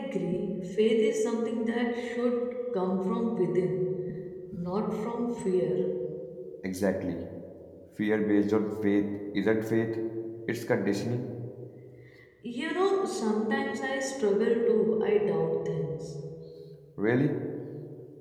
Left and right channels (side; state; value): both; identical; correlation 1.00